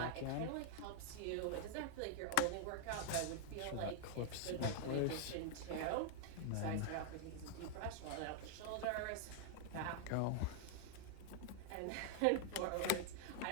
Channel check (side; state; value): both; different; correlation -0.01